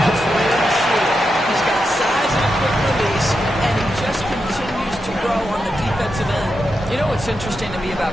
He's got size and a quick release, and he just continues to grow on the defensive end. You know what's interesting to me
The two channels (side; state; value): both; normal; correlation 0.87